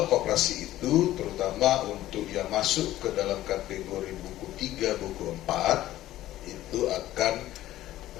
koperasi itu terutama untuk yang masuk ke dalam kategori buku 3, buku 4 itu akan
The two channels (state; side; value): quieter; right; 14.5 dB